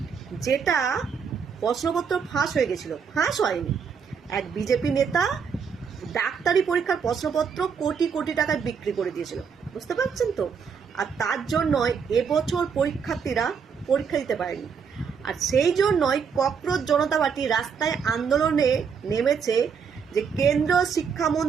যেটা প্রশ্নপত্র ফাঁস হয়ে গেছিল। ফাঁস হয়নি, এক বিজেপি নেতা ডাক্তারি পরীক্ষার প্রশ্নপত্র কোটি কোটি টাকায় বিক্রি করে দিয়েছিল, বুঝতে পারছেন তো। আর তার জন্যই এবছর পরীক্ষার্থীরা পরীক্ষা দিতে পারেনি। আর সেই জন্যই ককরোচ জনতা পার্টি রাস্তায় আন্দোলনে নেমেছে যে কেন্দ্রীয়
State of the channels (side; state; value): left; quieter; 6.4 dB